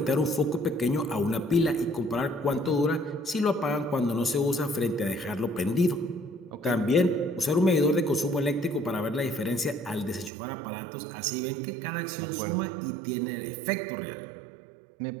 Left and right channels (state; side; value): drops out; left; at 10.3 s